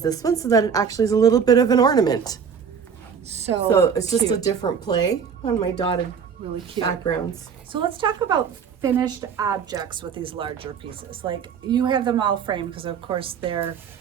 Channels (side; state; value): left; quieter; 6.8 dB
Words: this one so that it actually is a little bit of an ornament. So it's just a cute. different play on my dotted Really cute. backgrounds. So let's talk about finished objects with these larger pieces. Like you have them all framed because of course they're